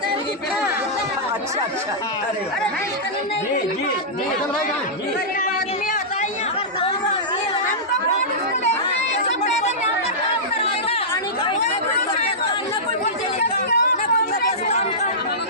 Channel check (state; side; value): normal; both; correlation -0.14